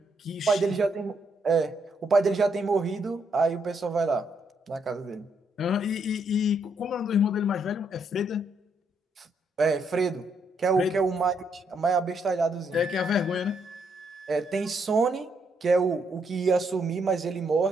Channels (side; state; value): both; normal; correlation 0.75